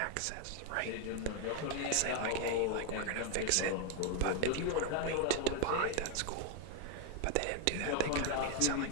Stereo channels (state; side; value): different; both; correlation 0.01